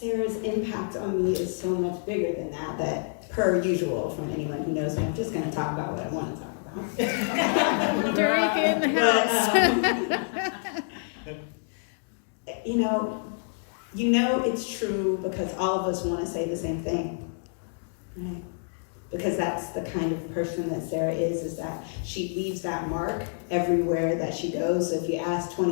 impact on me is so much bigger than that per usual from anyone who knows me, I'm just going to talk about what I want to talk about. Darika in the house. You know it's true because all of us want to say the same thing, right? Because that's the kind of person that Sarah is that she leaves that mark everywhere that she goes. So if you ask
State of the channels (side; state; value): right; silent; digital silence